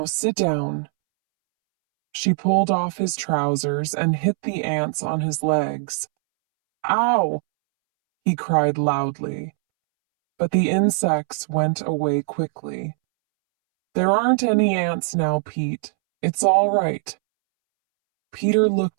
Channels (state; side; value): silent; left; 65 dB below the other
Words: sit down." She pulled off his trousers and hit the ants on his legs. "Ow!" he cried loudly. But the insects went away quickly. "There aren't any ants now, Pete. It's all right." Peter